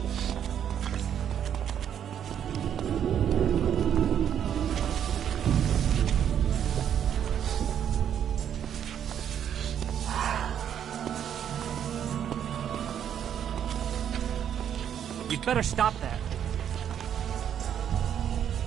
You'd better stop that.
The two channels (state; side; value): quieter; left; 9.2 dB